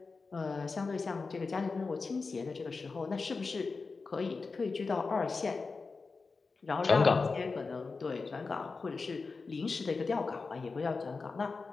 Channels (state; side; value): quieter; right; 4.3 dB